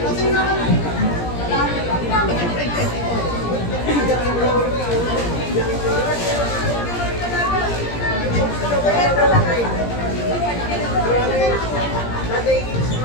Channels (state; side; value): late; right; 17 ms